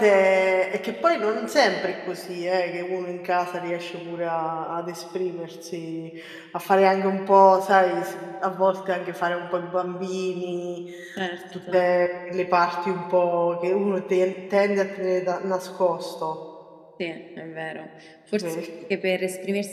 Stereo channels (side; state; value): both; identical; correlation 1.00